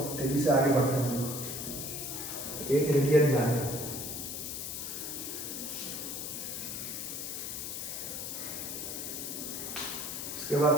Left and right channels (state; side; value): noise; left; hiss, 5 dB below the sound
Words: तेजी से आगे बढ़ते हैं हम लोग। एक रेडियन जाने, उसके बाद